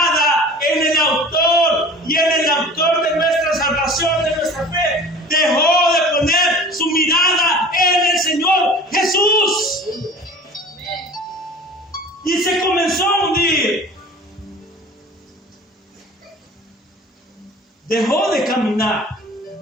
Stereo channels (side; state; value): both; normal; correlation 0.42